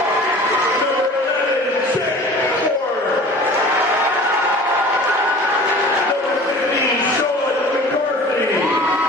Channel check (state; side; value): normal; both; correlation 0.43